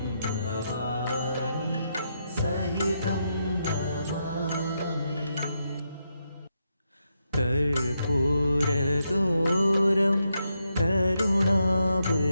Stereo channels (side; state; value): both; inverted; correlation -0.82